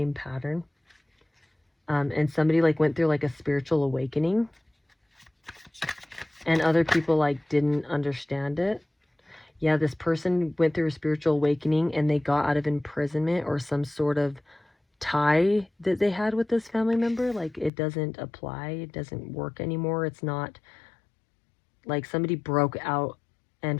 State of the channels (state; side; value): drops out; right; at 17.7 s